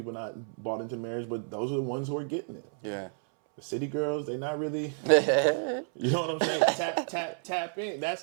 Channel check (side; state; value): left; silent; 58 dB below the other